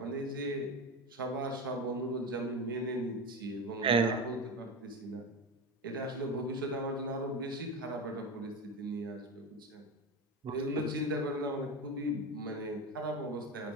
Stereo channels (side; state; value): both; normal; correlation 0.21